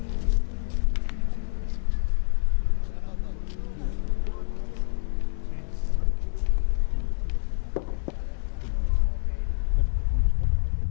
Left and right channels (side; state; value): right; silent; 60 dB below the other